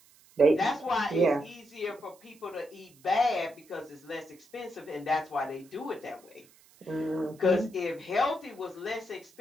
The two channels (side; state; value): right; noise; hiss, 27 dB below the sound